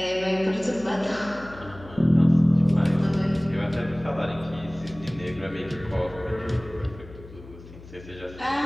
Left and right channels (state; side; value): noise; left; hum, 18 dB below the sound